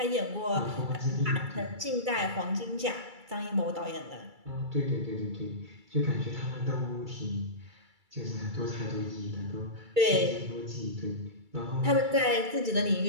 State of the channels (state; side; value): late; left; 2.3 ms